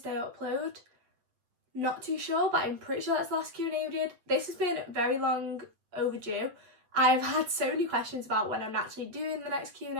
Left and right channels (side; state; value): left; late; 8.3 ms